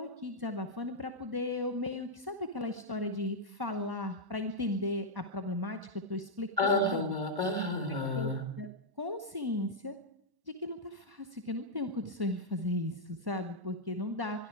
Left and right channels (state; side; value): late; left; 1.1 ms